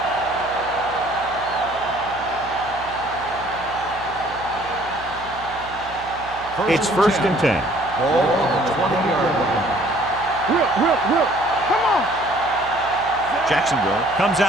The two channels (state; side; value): noise; right; hum, 18 dB below the sound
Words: It's first and 10. Ball on the 20-yard line. Whip. Come on. Jacksonville comes